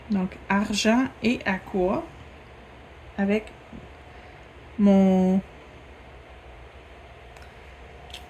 Donc, argent et aqua avec mon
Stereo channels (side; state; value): both; identical; correlation 1.00